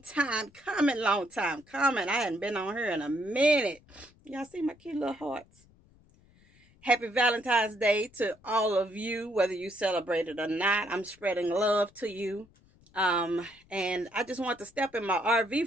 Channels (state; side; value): noise; left; rumble, 29 dB below the sound